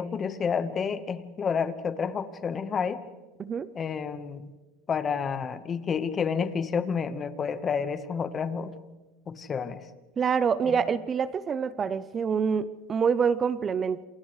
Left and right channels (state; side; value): normal; both; correlation 0.72